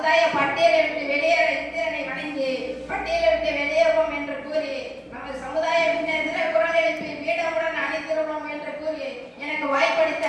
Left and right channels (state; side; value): identical; both; correlation 1.00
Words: பட்டியலை விட்டு வெளியேற இந்திரனை வணங்கி பட்டியலை விட்டு வெளியேறுவோம் என்று கூறி நமது சமுதாய முன்னேற்ற குரல் எழுப்பி வீடமுடன் அணிந்திருவோம் என்று கூறி எனக்கு வாய்ப்பளித்த